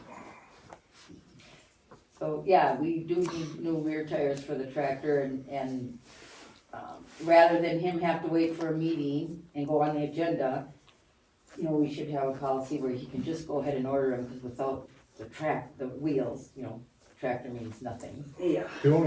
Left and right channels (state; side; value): identical; both; correlation 1.00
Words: So, yeah, we do need new rear tires for the tractor and rather than him have to wait for a meeting and go on the agenda, we should have a policy where he can just go ahead and order them, because without the wheels, tractor means nothing. Yeah. The